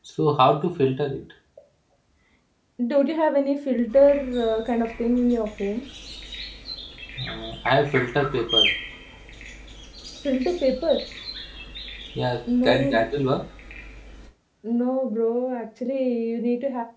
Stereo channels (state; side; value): identical; both; correlation 1.00